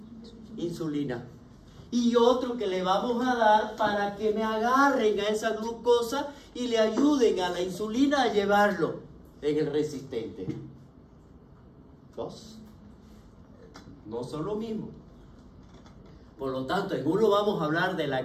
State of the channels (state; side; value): identical; both; correlation 1.00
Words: insulina. Y otro que le vamos a dar para que me agarren a esa glucosa y le ayuden a la insulina a llevarlo en el resistente. Dos. No son lo mismo. Por lo tanto, en uno vamos a hablar de la